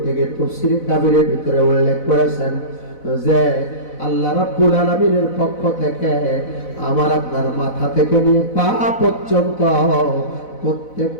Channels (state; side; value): late; right; 4.0 ms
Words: গিয়ে তাফসীরে কাবীরের ভিতরে উল্লেখ করেছেন যে আল্লাহ রাব্বুল আলামিনের পক্ষ থেকে আমার আপনার মাথা থেকে নিয়ে পা পর্যন্ত